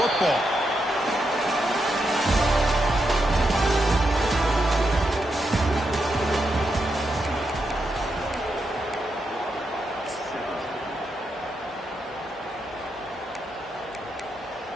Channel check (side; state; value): both; normal; correlation 0.84